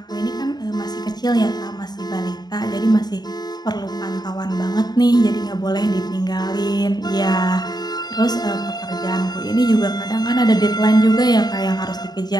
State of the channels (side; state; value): right; late; 0.20 ms